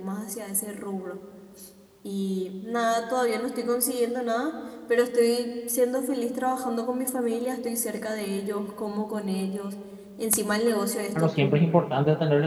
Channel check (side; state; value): both; identical; correlation 1.00